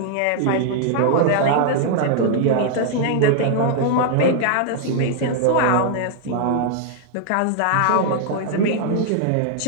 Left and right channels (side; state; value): both; different; correlation 0.00